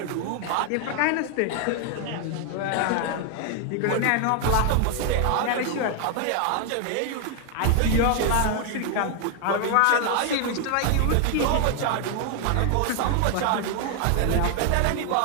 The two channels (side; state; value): both; different; correlation 0.00